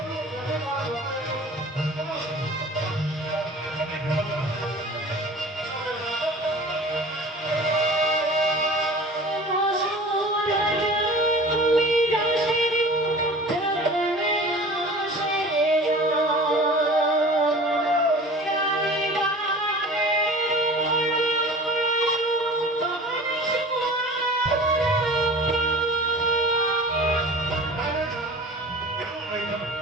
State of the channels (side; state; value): both; normal; correlation 0.41